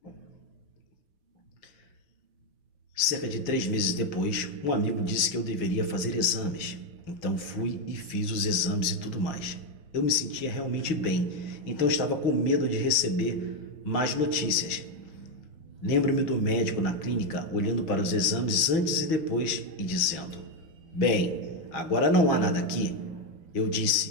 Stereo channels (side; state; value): right; late; 6.4 ms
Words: Cerca de 3 meses depois, um amigo disse que eu deveria fazer exames. Então fui e fiz os exames e tudo mais. Eu me sentia realmente bem, então estava com medo de receber mais notícias. Lembro-me do médico na clínica olhando para os exames antes e depois e dizendo: bem, agora não há nada aqui. Eu